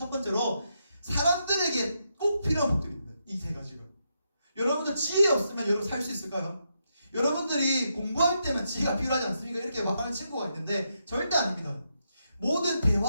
번째로 사람들에게 꼭 필요한 복들입니다. 이 세 가지가. 여러분들 지혜 없으면 여러분 살 수 있을까요? 여러분들이 공부할 때만 지혜가 필요하지 않습니까? 이렇게 말하는 친구가 있는데 절대 아닙니다. 모든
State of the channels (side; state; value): both; inverted; correlation -0.82